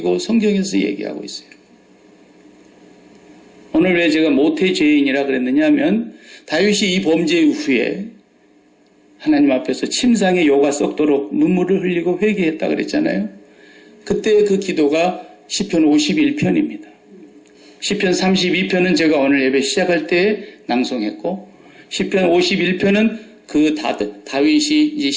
성경에서 얘기하고 있어요. 오늘 왜 제가 모태죄인이라 그랬느냐 하면 다윗이 이 범죄 후에 하나님 앞에서 침상에 요가 썩도록 눈물을 흘리고 회개했다 그랬잖아요. 그때 그 기도가 시편 51편입니다. 시편 32편은 제가 오늘 예배 시작할 때 낭송했고 시편 51편은 그 다윗이 이제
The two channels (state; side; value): identical; both; correlation 1.00